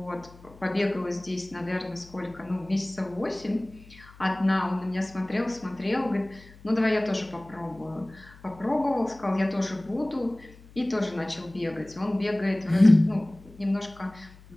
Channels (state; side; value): noise; left; hum, 22 dB below the sound